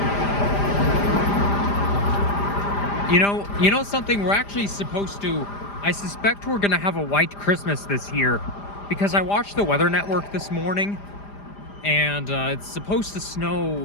You know something, we're actually supposed to, I suspect we're gonna have a white Christmas this year because I watched the Weather Network this morning and it's supposed to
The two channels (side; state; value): right; late; 5.0 ms